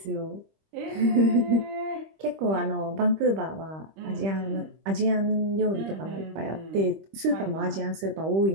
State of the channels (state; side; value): late; left; 25 ms